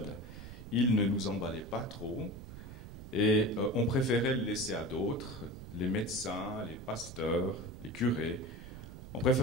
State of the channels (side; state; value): right; noise; rumble, 12 dB below the sound